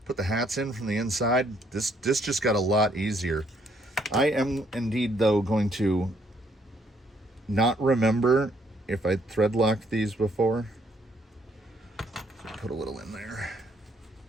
put the hats in from the inside, this just got a lot easier. I am indeed, though, going to not remember if I thread locked these before. So put a little in there.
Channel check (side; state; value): both; normal; correlation 0.69